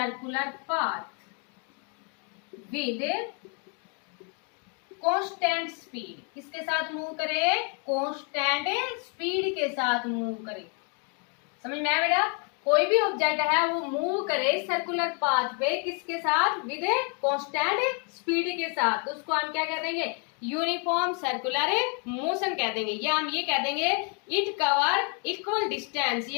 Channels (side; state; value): right; quieter; 37.7 dB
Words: path with constant speed, किसके साथ मूव करे, कांस्टेंट स्पीड के साथ मूव करे। समझ में आया बेटा, कोई भी ऑब्जेक्ट है वो मूव करे सर्कुलर पाथ पे किसके साथ, विद कांस्टेंट स्पीड के साथ, तो उसको हम क्या कह देंगे, यूनिफॉर्म सर्कुलर मोशन कह देंगे, या हम ये कह देंगे इट कवर इक्वल डिस्टेंस